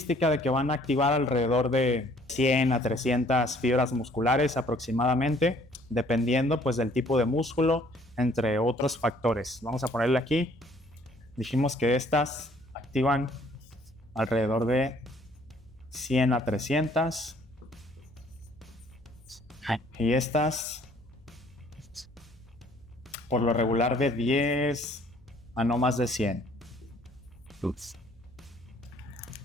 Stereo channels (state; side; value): noise; left; hum, 28 dB below the sound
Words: de que van a activar alrededor de 100 a 300 fibras musculares aproximadamente, dependiendo pues del tipo de músculo, entre otros factores. Vamos a ponerle aquí. Dijimos que estas activan alrededor de 100 a 300 y estas por lo regular de 10 a no más de 100.